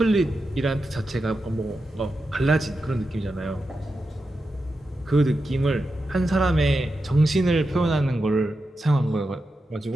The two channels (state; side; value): normal; both; correlation 0.89